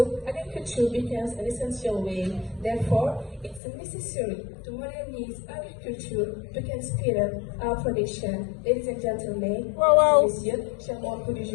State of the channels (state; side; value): drops out; right; at 3.6 s